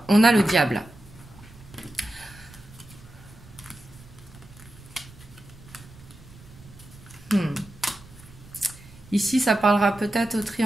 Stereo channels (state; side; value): noise; right; rumble, 21 dB below the sound